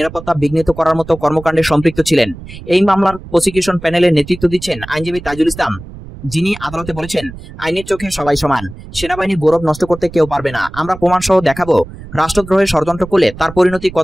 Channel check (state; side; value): noise; right; rumble, 15 dB below the sound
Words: বিঘ্নিত করার মতো কর্মকাণ্ডে সম্পৃক্ত ছিলেন। এই মামলার প্রসিকিউশন প্যানেলের নেতৃত্ব দিচ্ছেন আইনজীবী তাজুল ইসলাম, যিনি আদালতে বলেছেন, আইনের চোখে সবাই সমান। সেনাবাহিনীর গৌরব নষ্ট করতে কেউ পারবে না। আমরা প্রমাণ সহ দেখাবো রাষ্ট্রদ্রোহের ষড়যন্ত্র করলে তার পরিণতি